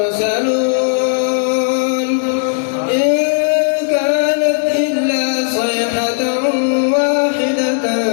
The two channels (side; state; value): right; silent; 69 dB below the other